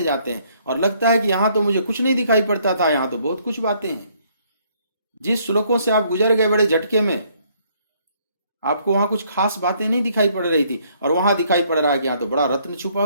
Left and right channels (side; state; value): both; inverted; correlation -0.66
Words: जाते हैं और लगता है कि यहां तो मुझे कुछ नहीं दिखाई पड़ता था, यहां तो बहुत कुछ बातें हैं। जिस श्लोकों से आप गुजर गए बड़े झटके में, आपको वहां कुछ खास बातें नहीं दिखाई पड़ रही थी, और वहां दिखाई पड़ रहा है कि यहां तो बड़ा रत्न छुपा